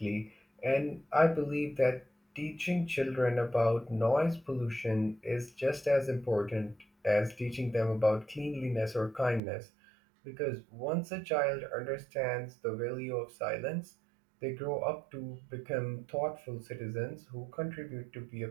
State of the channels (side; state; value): left; drops out; at 9.4 s